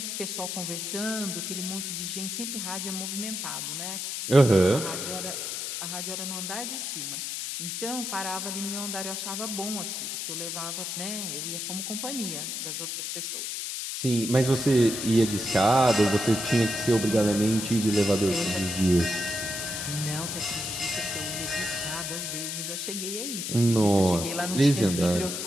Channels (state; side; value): noise; left; hiss, 4 dB below the sound